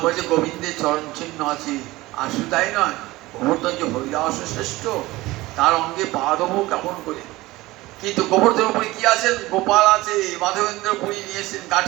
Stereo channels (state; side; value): quieter; left; 19.3 dB